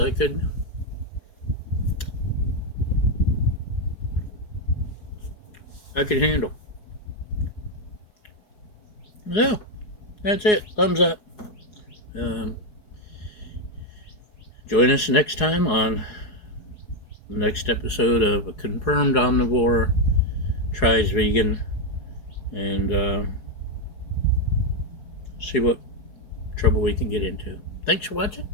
could handle. So that's it. Thumbs up. Join us next time on the next episode of A Confirmed Omnivore Tries Vegan, and see what trouble we can get into. Thanks for watching.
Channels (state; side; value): late; right; 4.8 ms